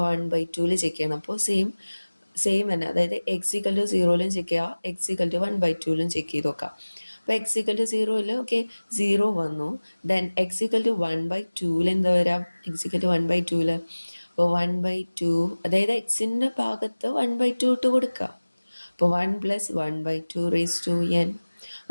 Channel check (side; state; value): both; inverted; correlation -1.00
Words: ബൈ 2ൽ ചെക്ക് ചെയ്യണം. അപ്പോൾ സെയിം തന്നെ, അതായത് എക്സ് ഈക്വൽ ടു 0യിലും ചെക്ക് ചെയ്യുക, എക്സ് ഈക്വൽ ടു 1 ബൈ 2ലും ചെക്ക് ചെയ്ത് നോക്കാം. അപ്പോൾ എക്സ് ഈക്വൽ ടു 0യിൽ ഓക്കെ 0 വന്നു. Then X equal to 1 by 2ൽ എന്താ വരാം? എക്സ് ഈക്വൽ ടു 1 ബൈ 2ൽ അപ്പോൾ 1 ബൈ 2, അതായത് എക്സിൻ്റെ ഭാഗത്ത് 1 ബൈ 2 ഇട്ട് കൊടുക്കുക. അപ്പോൾ 1 plus 1 by 2 raise to n.